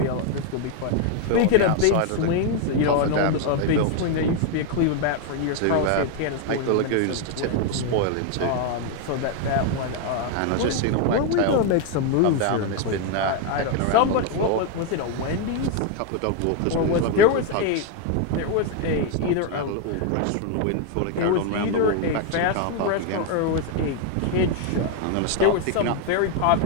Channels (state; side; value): different; both; correlation 0.01